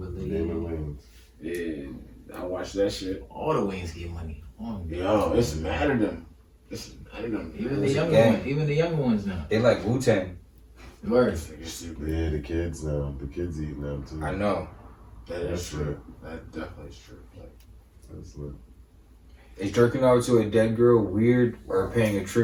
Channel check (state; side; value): identical; both; correlation 1.00